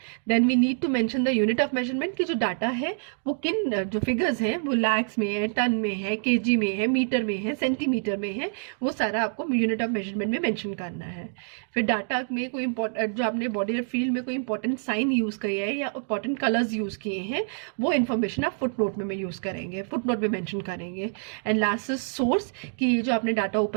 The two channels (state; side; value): silent; left; digital silence